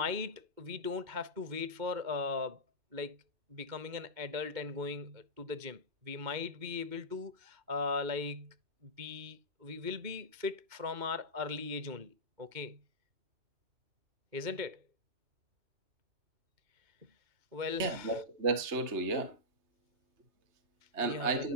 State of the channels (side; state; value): left; late; 3.2 ms